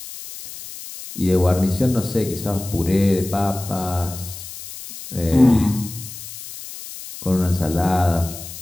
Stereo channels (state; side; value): noise; left; hiss, 12 dB below the sound